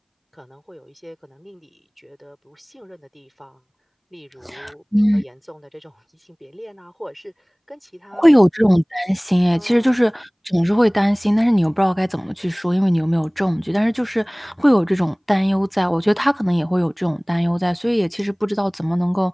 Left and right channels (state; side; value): identical; both; correlation 1.00